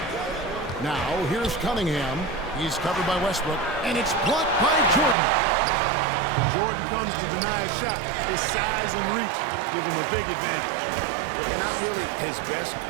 Now, here's Cunningham. He's covered by Westbrook, and it's blocked by Jordan. When Jordan comes to deny a shot, his size and reach give him a big advantage. Not really his best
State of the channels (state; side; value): drops out; left; at 5.2 s